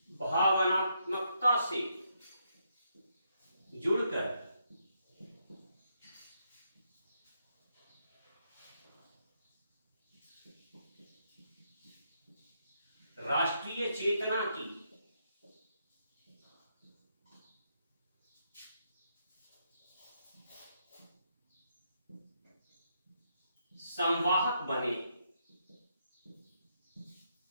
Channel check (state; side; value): inverted; both; correlation -0.78